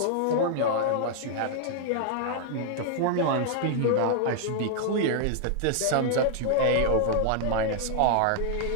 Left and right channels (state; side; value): different; both; correlation -0.01